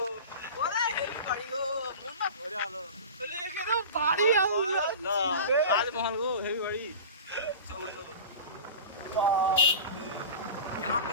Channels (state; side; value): inverted; both; correlation -0.34